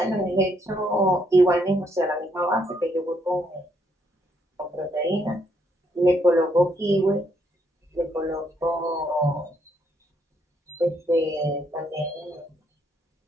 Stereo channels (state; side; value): normal; both; correlation 0.73